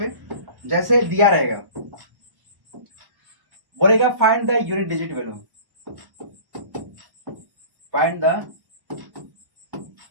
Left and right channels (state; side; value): late; left; 1.1 ms